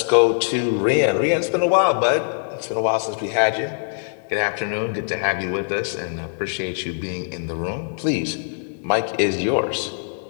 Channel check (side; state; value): right; silent; digital silence